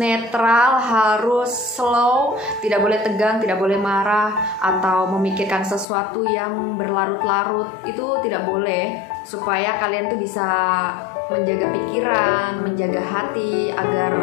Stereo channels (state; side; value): drops out; right; at 5.9 s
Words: harus slow, tidak boleh tegang, tidak boleh marah atau memikirkan sesuatu yang berlarut-larut. Itu tidak boleh, supaya kalian tuh bisa menjaga pikiran, menjaga hati